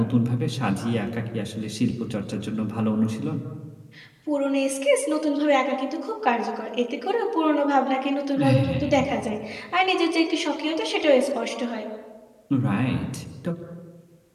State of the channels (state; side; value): identical; both; correlation 1.00